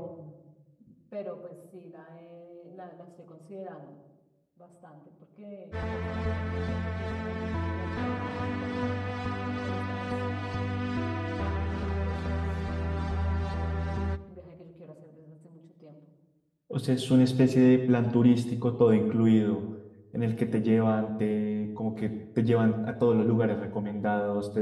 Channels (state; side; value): identical; both; correlation 1.00